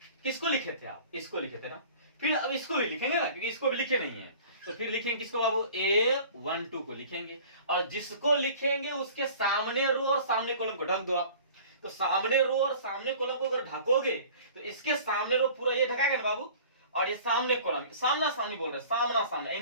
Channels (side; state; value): both; inverted; correlation -0.45